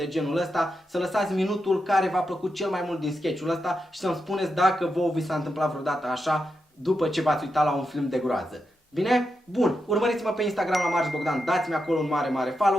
genul ăsta, să lăsați minutul care v-a plăcut cel mai mult din sketch-ul ăsta și să-mi spuneți dacă vouă vi s-a întâmplat vreodată așa după ce v-ați uitat la un film de groază. Bine? Bun, urmăriți-mă pe Instagram la Marș Bogdan, dați-mi acolo un mare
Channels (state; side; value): normal; both; correlation 0.86